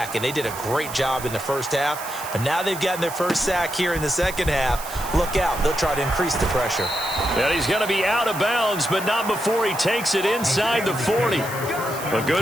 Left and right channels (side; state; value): right; noise; hiss, 12 dB below the sound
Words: And they did a great job in the first half. But now they've gotten their first sack here in the second half. Look out. They'll try to increase the pressure. And he's going to be out of bounds, but not before he takes it inside the 40. A